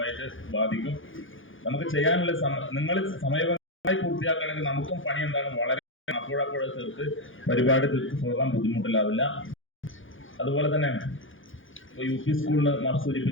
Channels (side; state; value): right; late; 0.58 ms